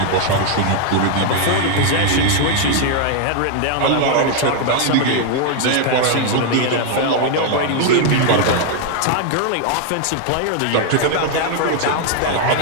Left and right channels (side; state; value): both; different; correlation 0.00